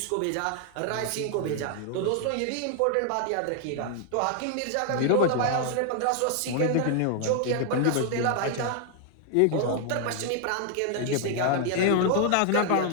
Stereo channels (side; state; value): both; different; correlation 0.00